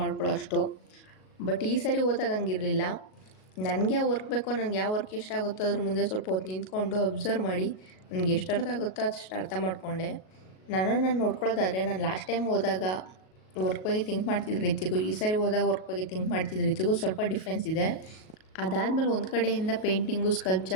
ಅಷ್ಟು. ಬಟ್ ಈ ಸಾರಿ ಹೋದಾಗ ಹಂಗಿರಲಿಲ್ಲ. ನನಗೆ ಯಾವ ವರ್ಕ್ ಬೇಕೋ, ನನಗೆ ಯಾವ ವರ್ಕ್ ಇಷ್ಟ ಆಗುತ್ತೋ ಅದ್ರ ಮುಂದೆ ಸ್ವಲ್ಪ ಹೊತ್ತು ನಿಂತ್ಕೊಂಡು ಅಬ್ಸರ್ವ್ ಮಾಡಿ ನನಗೆ ಎಷ್ಟು ಅರ್ಥ ಆಗುತ್ತೋ ಅಷ್ಟು ಅರ್ಥ ಮಾಡಿಕೊಂಡೆ. ನಾನು ನೋಡ್ಕೊಳ್ಳೋದಾದರೆ, ನಾನು ಲಾಸ್ಟ್ ಟೈಮ್ ಹೋದಾಗ ವರ್ಕ್ ಬಗ್ಗೆ ಥಿಂಕ್ ಮಾಡ್ತಿದ್ದ ರೀತಿಗೂ ಈ ಸಾರಿ ಹೋದಾಗ ವರ್ಕ್ ಬಗ್ಗೆ ಥಿಂಕ್ ಮಾಡ್ತಿದ್ದ ರೀತಿಗೂ ಸ್ವಲ್ಪ ಡಿಫ್ರೆನ್ಸ್ ಇದೆ. ಅದಾದಮೇಲೆ ಒಂದು ಕಡೆಯಿಂದ ಪೇಂಟಿಂಗು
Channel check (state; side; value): late; right; 37 ms